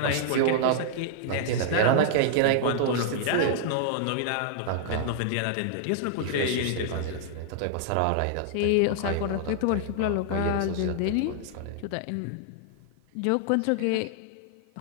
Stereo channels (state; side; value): different; both; correlation -0.01